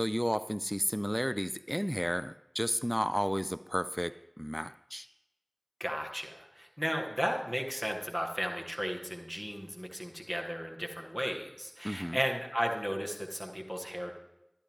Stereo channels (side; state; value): both; identical; correlation 1.00